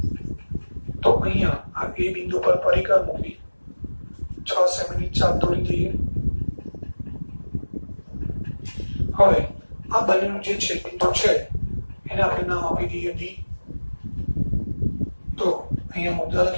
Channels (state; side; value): inverted; both; correlation -1.00